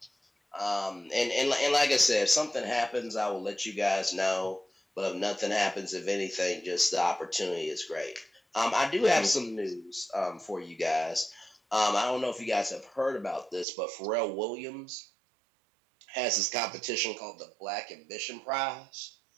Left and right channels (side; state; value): left; drops out; at 13.7 s